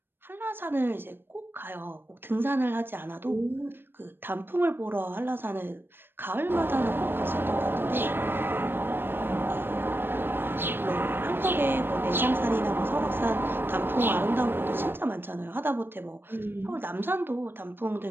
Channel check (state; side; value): late; left; 0.099 ms